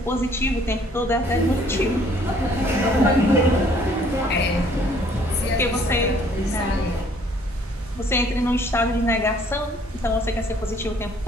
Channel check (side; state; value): both; normal; correlation 0.60